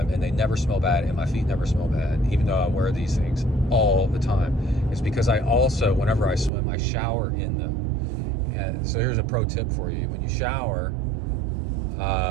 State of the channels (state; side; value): drops out; left; at 6.5 s